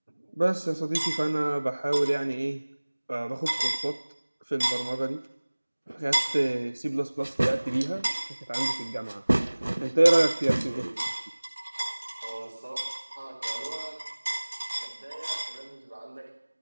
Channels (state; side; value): inverted; both; correlation -1.00